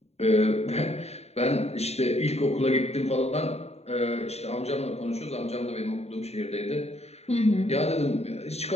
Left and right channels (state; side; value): late; right; 0.31 ms